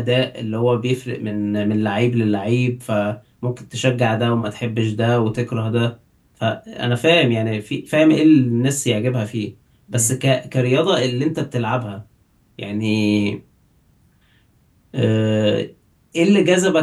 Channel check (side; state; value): both; identical; correlation 1.00